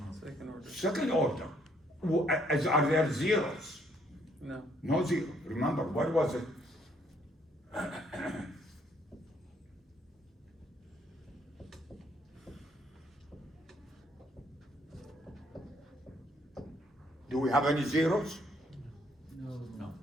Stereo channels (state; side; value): normal; both; correlation 0.68